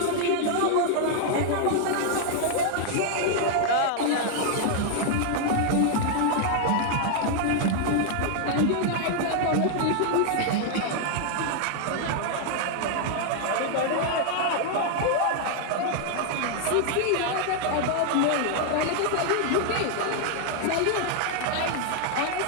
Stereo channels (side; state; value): both; different; correlation 0.00